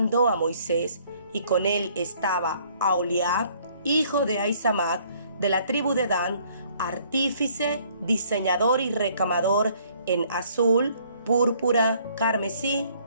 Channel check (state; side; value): inverted; both; correlation -0.61